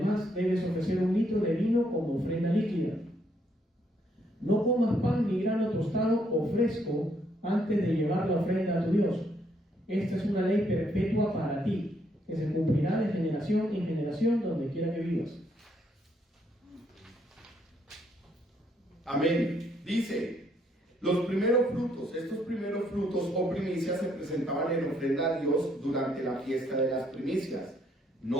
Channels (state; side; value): normal; both; correlation 0.71